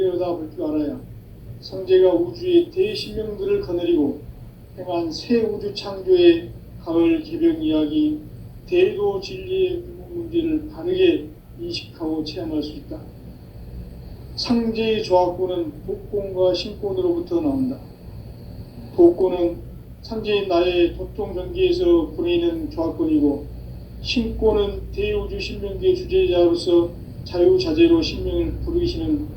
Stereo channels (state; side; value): identical; both; correlation 1.00